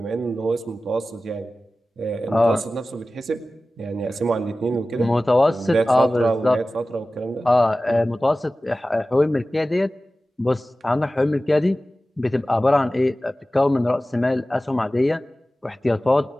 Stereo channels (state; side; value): normal; both; correlation 0.96